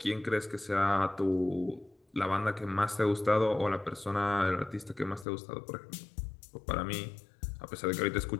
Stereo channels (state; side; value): drops out; right; at 5.2 s